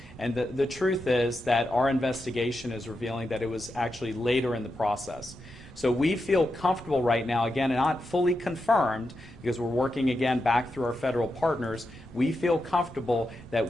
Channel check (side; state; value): both; normal; correlation 0.87